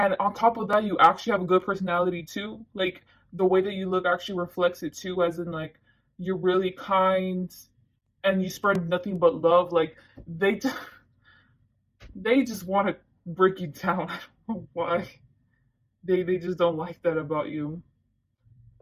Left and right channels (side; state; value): both; identical; correlation 1.00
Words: on top of that, you actually have a good personality too. Like the way that you look actually reflects it too, as in like you're really kind and you spread nothing but love. Like they they just want to break you down. I don't know why. They just don't like that about you.